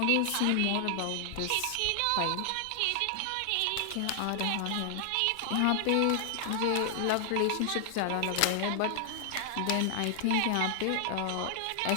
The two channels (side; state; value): both; different; correlation 0.00